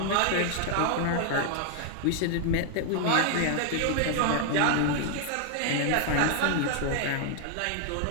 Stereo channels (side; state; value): both; different; correlation 0.00